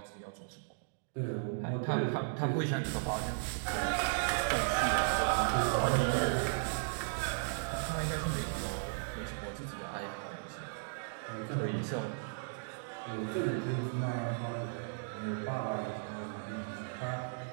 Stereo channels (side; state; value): left; silent; digital silence